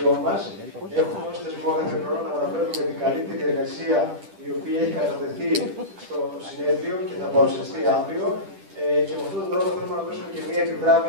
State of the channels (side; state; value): left; late; 10 ms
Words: μας, έχουμε ως θεσμό κάθε χρόνο να αναφέρουμε την καλύτερη εργασία η οποία έχει κατατεθεί στο συνέδριο και θα παρουσιαστεί αύριο. Και με αυτόν τον τρόπο θέλουμε να δώσουμε και μια